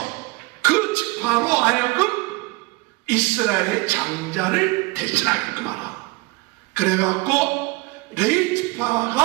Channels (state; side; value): quieter; left; 24.1 dB